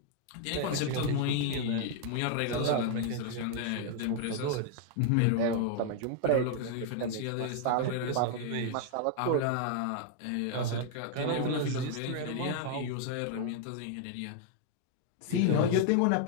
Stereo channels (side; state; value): both; different; correlation 0.00